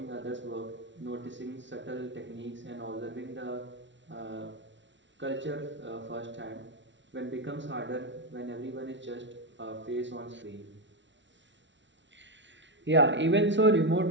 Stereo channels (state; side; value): late; left; 0.54 ms